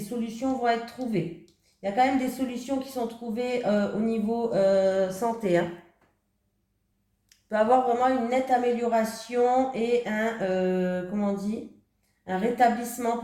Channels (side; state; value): both; identical; correlation 1.00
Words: vont être trouvées. Il y a quand même des solutions qui sont trouvées au niveau santé. Hein. Il peut y avoir vraiment une nette amélioration et comment on dit, un rétablissement